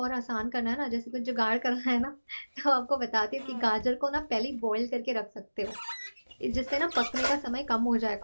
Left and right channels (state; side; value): inverted; both; correlation -1.00